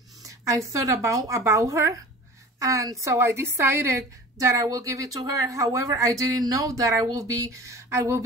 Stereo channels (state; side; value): normal; both; correlation 0.40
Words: I thought about her, and so I decided that I will give it to her. However, I didn't know that I will be